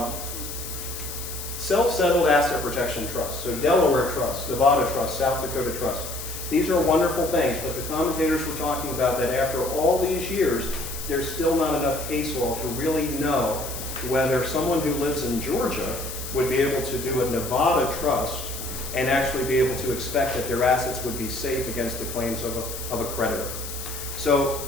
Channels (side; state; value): left; noise; hiss, 9 dB below the sound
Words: Self-settled asset protection trust, so Delaware Trust, Nevada Trust, South Dakota Trust. These are wonderful things, but the commentators were talking about that after all these years, there's still not enough case law to really know whether someone who lives in Georgia would be able to do a Nevada trust and actually be able to expect that their assets would be safe against the claims of a creditor.